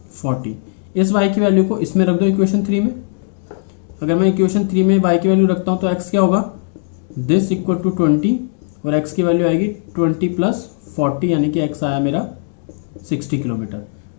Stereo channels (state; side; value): silent; right; digital silence